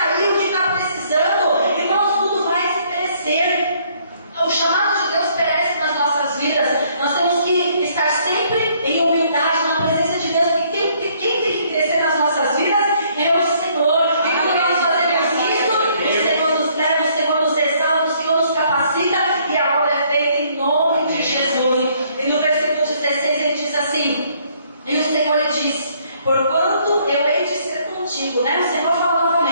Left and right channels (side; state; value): both; inverted; correlation -0.65